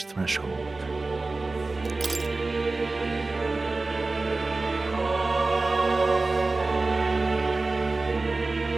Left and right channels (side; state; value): left; quieter; 3.4 dB